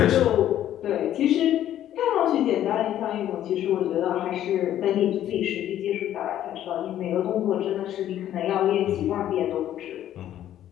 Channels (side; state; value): right; quieter; 11.7 dB